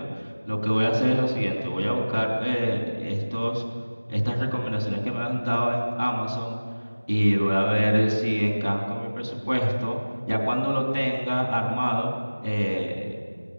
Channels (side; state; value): both; inverted; correlation -1.00